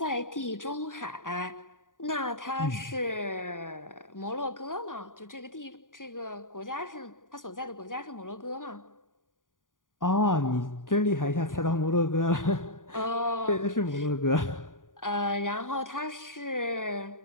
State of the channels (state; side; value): late; right; 0.89 ms